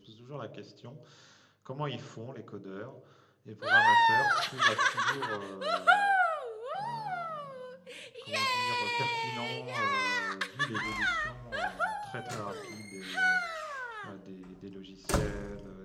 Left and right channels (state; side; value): identical; both; correlation 1.00